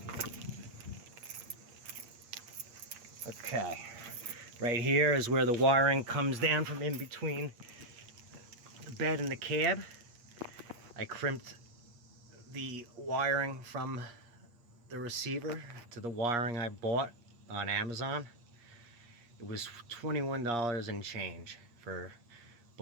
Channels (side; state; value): left; late; 8.5 ms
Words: Okay, right here is where the wiring comes down from in between the bed and the cab. I crimped the wiring from the receiver to the wiring I bought on Amazon. It was $21 and change for